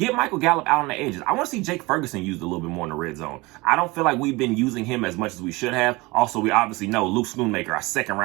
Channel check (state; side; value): quieter; left; 23.1 dB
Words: Michael Gallup out on the edges. I want to see Jake Ferguson used a little bit more in the red zone. I don't feel like we've been using him as much as we should have. Also, we obviously know Luke Schoonmaker, our second